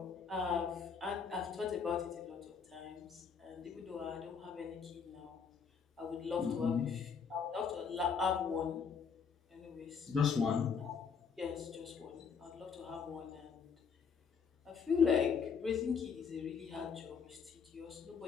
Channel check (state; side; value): quieter; right; 6.2 dB